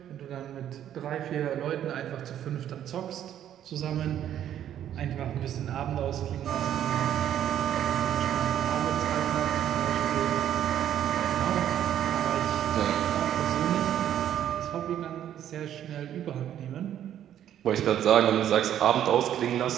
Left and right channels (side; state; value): left; quieter; 10.7 dB